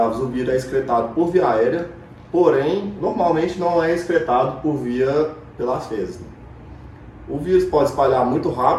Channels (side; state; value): both; identical; correlation 1.00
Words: o vírus é excretado por via aérea, porém, normalmente não é excretado pelas fezes. O vírus pode espalhar muito